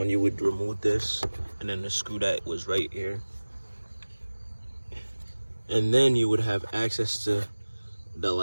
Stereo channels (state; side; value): inverted; both; correlation -1.00